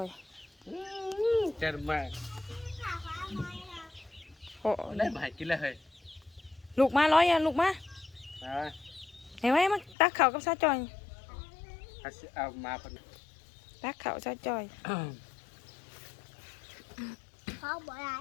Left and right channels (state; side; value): drops out; right; at 10.0 s